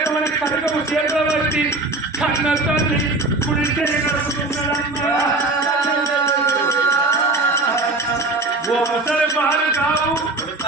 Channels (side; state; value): left; quieter; 3.0 dB